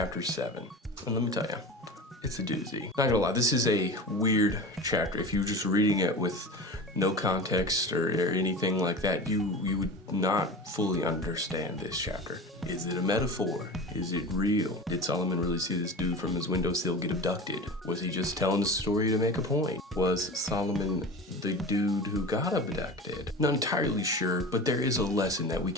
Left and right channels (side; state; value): both; normal; correlation 0.32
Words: 7. And let me tell you, it's a doozy. Not gonna lie, this is a weird chapter. If you're just reading it with no context or anything like that, you would not fully understand this chapter. Is it a metaphor? Is it real? Did Solomon really see this dude from his windowsill get abducted? Was he just telling the story to make a point? Was Solomon the dude who got abducted? Not entirely sure, but there is a lesson that we